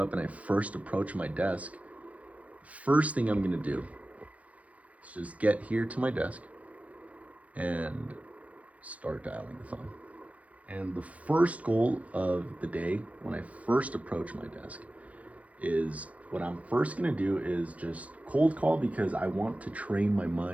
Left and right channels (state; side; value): late; left; 0.066 ms